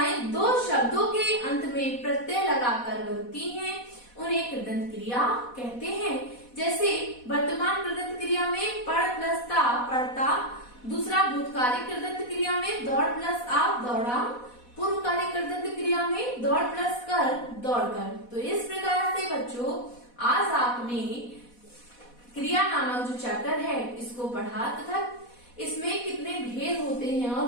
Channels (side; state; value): right; late; 4.1 ms